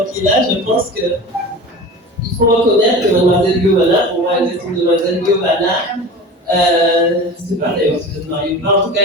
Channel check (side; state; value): both; normal; correlation 0.34